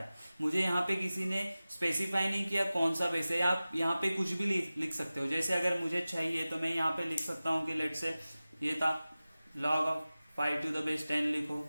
मुझे यहाँ पे किसी ने स्पेसिफाई नहीं किया कौन सा बेस है। आप यहाँ पे कुछ भी लिख सकते हो। जैसे अगर मुझे चाहिए तो मैं यहाँ पे लिख सकता हूँ कि लेट से ये था log of 5 to the base 10 लिखो,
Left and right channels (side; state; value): both; inverted; correlation -0.96